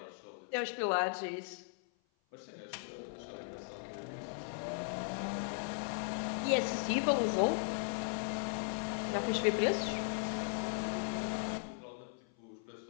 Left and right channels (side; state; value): right; silent; 53 dB below the other